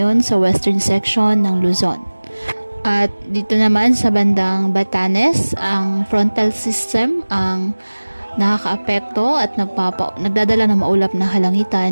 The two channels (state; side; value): inverted; both; correlation -1.00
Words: sa western section ng Luzon. At dito naman sa bandang Batanes, ang frontal system ang nakakaapekto at nagdadala ng maulap na